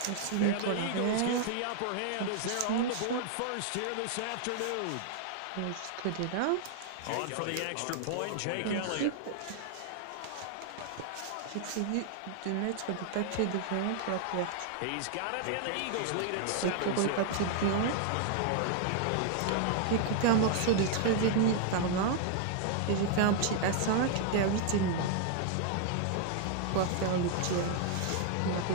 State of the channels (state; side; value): different; both; correlation 0.00